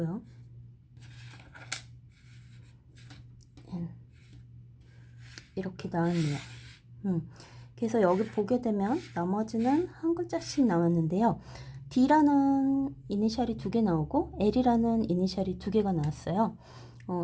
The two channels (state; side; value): identical; both; correlation 1.00